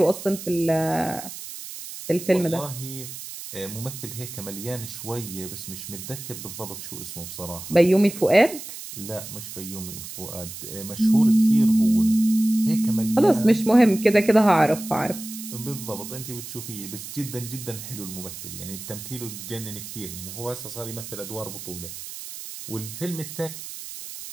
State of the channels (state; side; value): noise; right; hiss, 11 dB below the sound